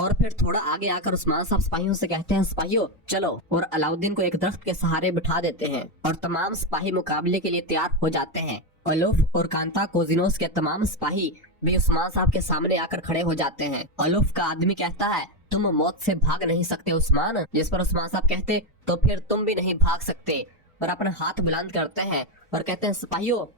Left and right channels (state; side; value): normal; both; correlation 0.10